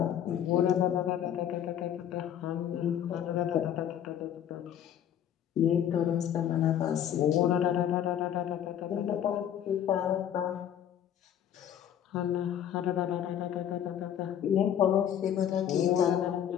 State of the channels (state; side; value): quieter; right; 10.0 dB